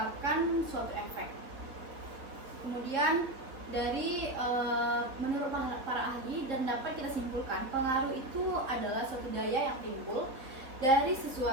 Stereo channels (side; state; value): left; late; 3.4 ms